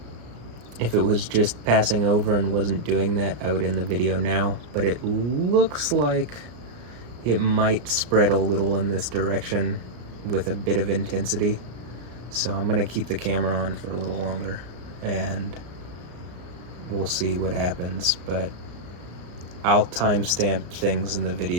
if it was just passing over and wasn't doing that, I would end the video now. But it looks like it might spread a little in this direction with a bit of intensity. So I'm gonna keep the camera on for a little longer and we'll see what happens. But I'll timestamp things in the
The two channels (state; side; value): late; left; 34 ms